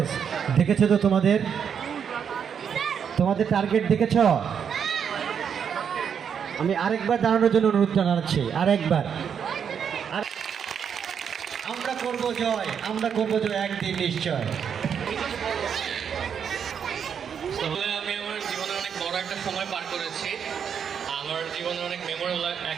দেখেছো তো তোমাদের টার্গেট দেখেছ? আমি আরেকবার দাঁড়ানোর জন্য অনুরোধ জানাচ্ছি, আরেকবার। আমরা করব জয়, একদিন নিশ্চয়। তাহলে আমি আমার জীবনে অনেক বড় একটা সময় পার করেছি। আমার জীবনে অনেক মেমোরেবল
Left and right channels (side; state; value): left; quieter; 7.5 dB